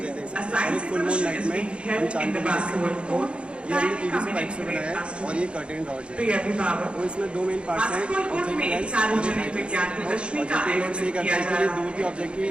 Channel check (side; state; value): left; late; 0.058 ms